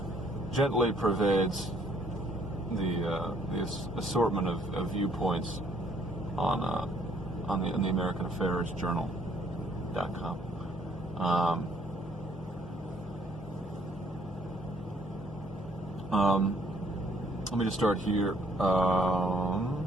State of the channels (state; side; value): noise; left; hum, 19 dB below the sound